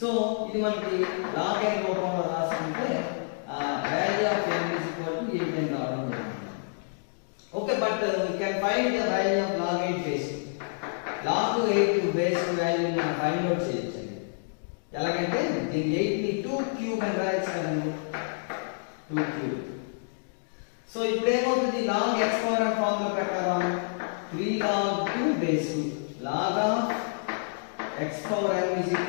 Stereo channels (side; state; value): right; silent; digital silence